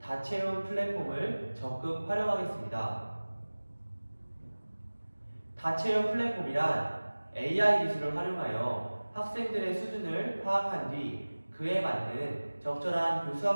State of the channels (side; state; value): both; inverted; correlation -1.00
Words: 다채움 플랫폼을 적극 활용하겠습니다. 다채움 플랫폼이란 AI 기술을 활용하여 학생들의 수준을 파악한 뒤 그에 맞는 적절한